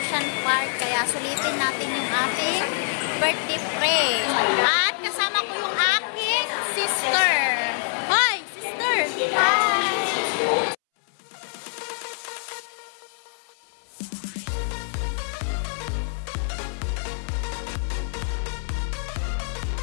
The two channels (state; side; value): silent; right; 62 dB below the other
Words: Park. Kaya sulitin natin yung ating birthday pre. At kasama ko yung aking sister. Hi, sister! Hi!